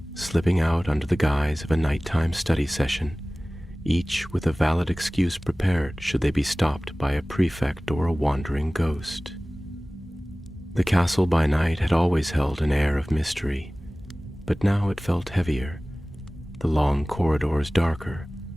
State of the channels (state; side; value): normal; both; correlation 0.98